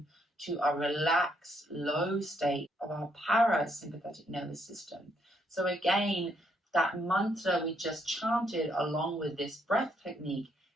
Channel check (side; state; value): both; normal; correlation 0.73